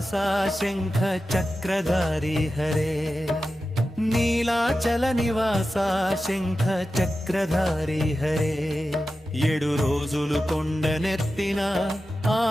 శంఖ చక్రధారి హరే నీలాచల నివాస శంఖ చక్రధారి హరే 7 రోజులు కొండనెత్తిన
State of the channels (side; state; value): both; normal; correlation 0.93